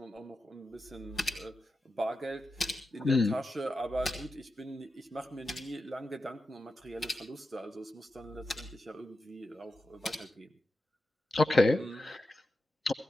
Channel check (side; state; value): both; normal; correlation 0.91